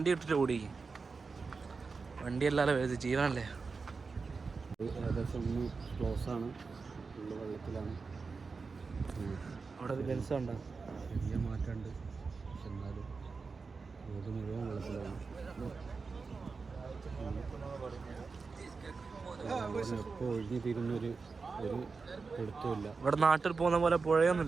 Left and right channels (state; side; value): quieter; left; 4.6 dB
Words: ഇട്ടിട്ട് ഓടിക്കും. വണ്ടി അല്ലാതെ ജീവനല്ലേ. ഏകദേശം ഒന്ന് ക്ലോസ് ആണ്, ഉള്ള വെള്ളത്തിലാണ്. അവിടെ ഒരു ബെൻസ് ഉണ്ടോ? ചെറിയ മാറ്റമുണ്ട്, പക്ഷെ എന്നാലും റോഡ് മുഴുവൻ വെള്ളത്തിലാണ്. എപ്പോൾ ഒഴിഞ്ഞു തീരുന്നൊരു എടുത്തുമില്ല. ഇവിടെ നാട്ടിൽ പോകുന്ന പോലെ